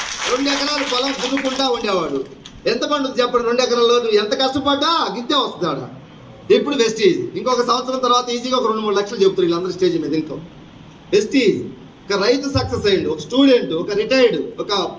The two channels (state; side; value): identical; both; correlation 1.00